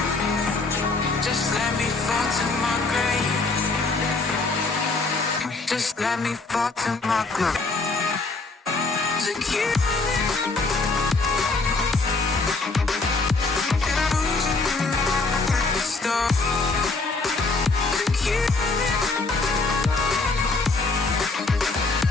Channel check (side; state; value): right; quieter; 3.7 dB